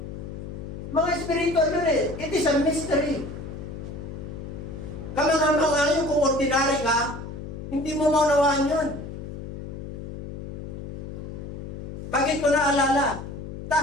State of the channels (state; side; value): noise; left; hum, 9 dB below the sound